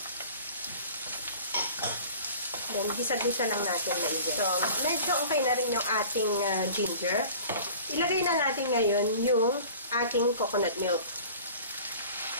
Then, gisa-gisa lang natin maigi. So, medyo okay na rin yung ating ginger. Ilagay na natin ngayon yung ating coconut milk.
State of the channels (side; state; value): both; inverted; correlation -0.44